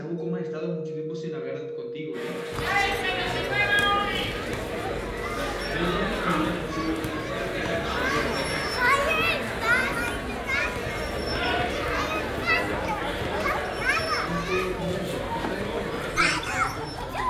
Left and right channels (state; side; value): identical; both; correlation 1.00